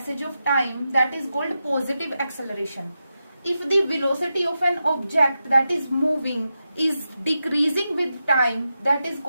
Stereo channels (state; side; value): inverted; both; correlation -0.89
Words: of time, that is called positive acceleration। If the velocity of an object that is moving is decreasing with time, that is